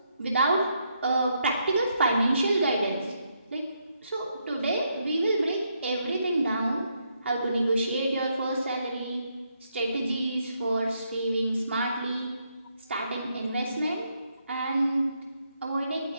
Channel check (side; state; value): both; inverted; correlation -0.77